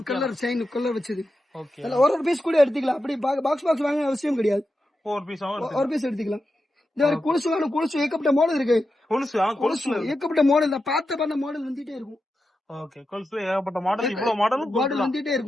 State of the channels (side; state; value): both; normal; correlation 0.89